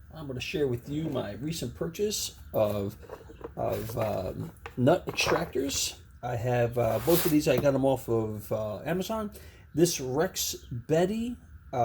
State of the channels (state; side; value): identical; both; correlation 1.00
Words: I'm going to share with you my recent purchase of nut extractors. I have both of these. I got them off of Amazon. This Rex Betty